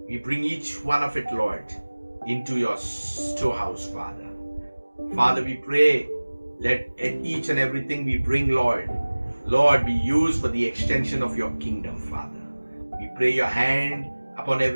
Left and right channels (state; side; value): inverted; both; correlation -1.00